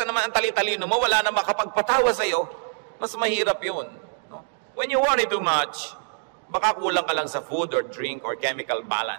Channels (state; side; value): silent; left; digital silence